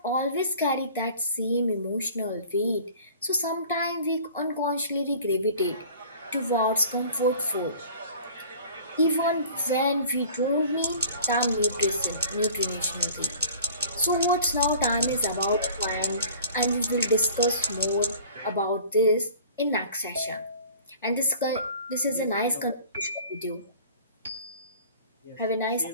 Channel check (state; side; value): inverted; both; correlation -0.47